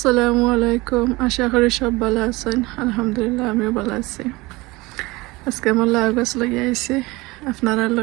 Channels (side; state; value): left; quieter; 22.2 dB